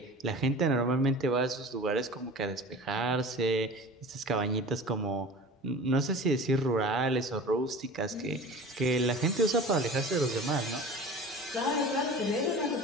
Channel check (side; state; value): both; normal; correlation 0.38